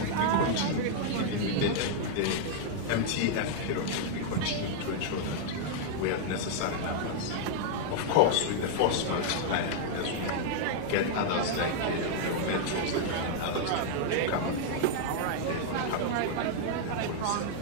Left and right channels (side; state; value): both; different; correlation -0.01